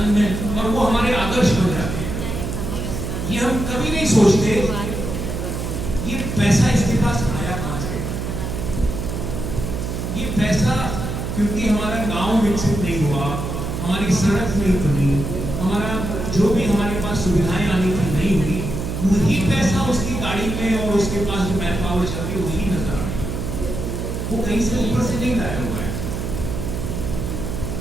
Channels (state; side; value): noise; right; hum, 4 dB below the sound